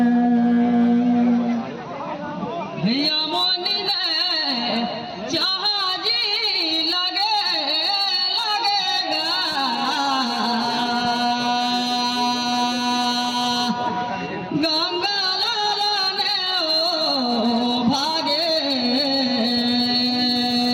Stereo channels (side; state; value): both; identical; correlation 1.00